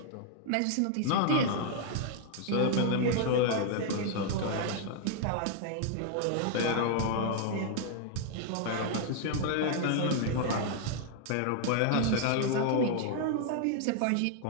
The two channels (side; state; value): both; different; correlation 0.00